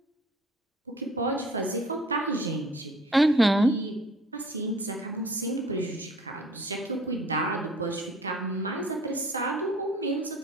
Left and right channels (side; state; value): both; normal; correlation 0.51